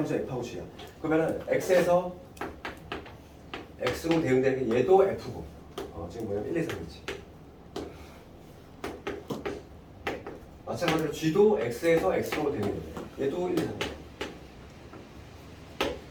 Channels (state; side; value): identical; both; correlation 1.00